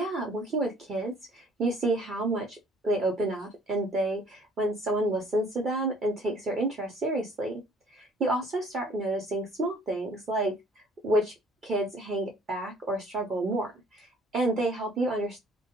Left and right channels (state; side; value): normal; both; correlation 0.56